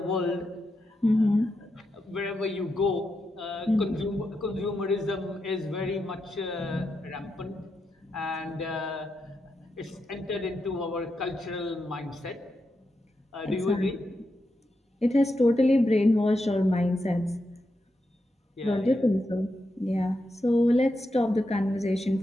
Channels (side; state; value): both; normal; correlation 0.86